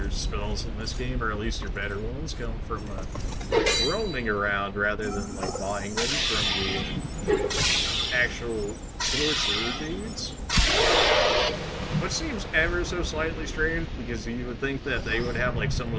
spells in this game, or at least your better ones, come from roaming around rather than like buying them from the actual sorcerer dudes. Which seems ever so slightly strange because you would think that they would have like some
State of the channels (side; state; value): both; identical; correlation 1.00